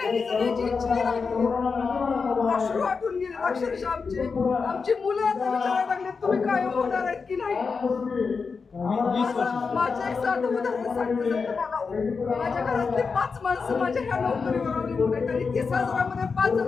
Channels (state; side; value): quieter; right; 5.0 dB